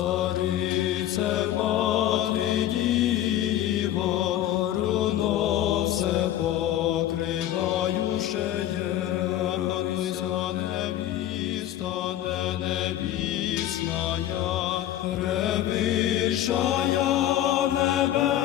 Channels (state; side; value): quieter; right; 12.5 dB